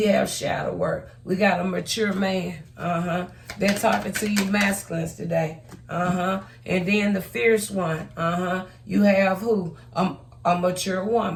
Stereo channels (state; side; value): identical; both; correlation 1.00